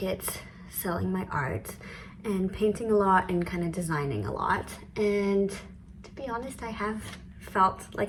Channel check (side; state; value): both; identical; correlation 1.00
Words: selling my art, and painting a lot and kind of designing a lot. And to be honest, I have felt